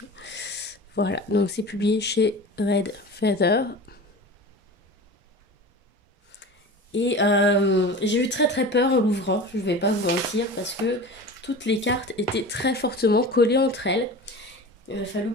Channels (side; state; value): both; normal; correlation 0.34